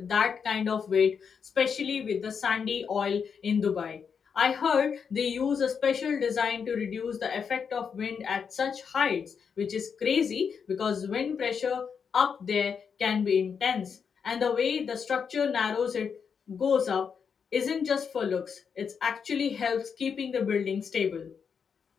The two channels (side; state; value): right; quieter; 6.5 dB